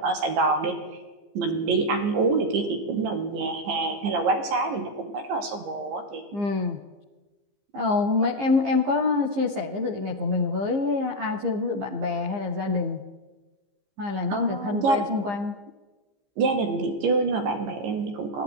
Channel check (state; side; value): late; left; 15 ms